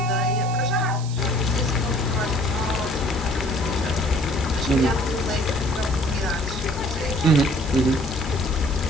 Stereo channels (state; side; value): noise; right; hiss, 15 dB below the sound